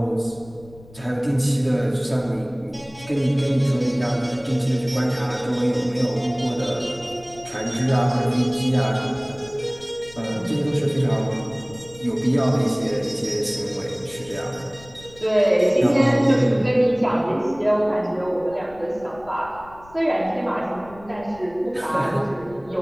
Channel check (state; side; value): noise; left; rumble, 22 dB below the sound